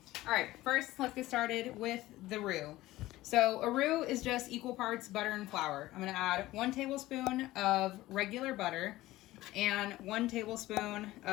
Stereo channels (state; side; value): quieter; right; 17.0 dB